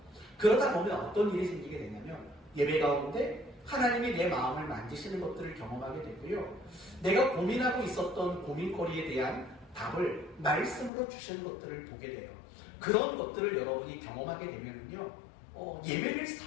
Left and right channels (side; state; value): right; drops out; at 10.9 s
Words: 그러다 보면 어떤 일이 생기게 되냐면 예배 가운데 하나님이 내 마음을 만지시는 것들을 경험하게 되고요, 내가 고민하고 있었던 고민거리에 대한 답을 말씀으로 주시는 것들을 보게 돼요. 그런 것들을 여러분이 경험하게 되면요, 예배를